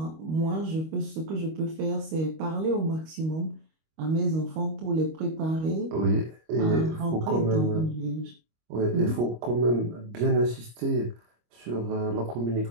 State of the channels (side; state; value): left; late; 25 ms